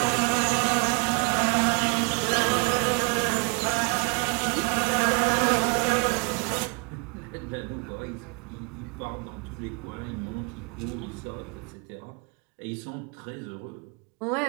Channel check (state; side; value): quieter; left; 33.2 dB